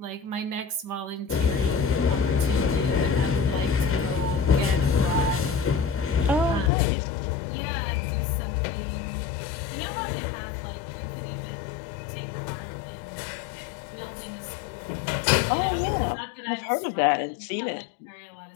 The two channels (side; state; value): right; drops out; at 6.7 s